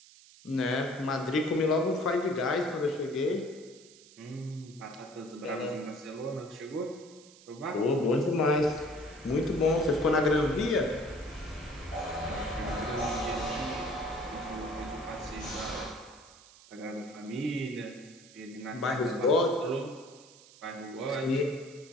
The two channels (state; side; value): noise; right; hiss, 22 dB below the sound